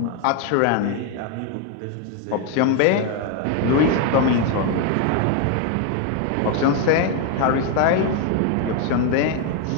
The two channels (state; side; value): different; both; correlation 0.01